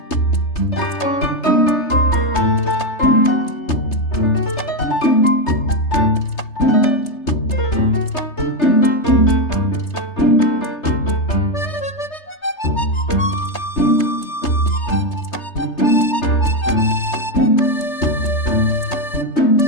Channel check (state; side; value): late; right; 3.3 ms